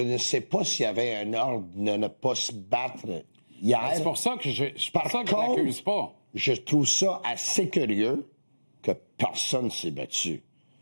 ne sais pas s'il y avait un ordre de ne pas se battre hier. C'est pour ça que je contre, l'accuse pas. Je trouve ça assez curieux que personne ne s'est battu.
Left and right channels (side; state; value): both; inverted; correlation -1.00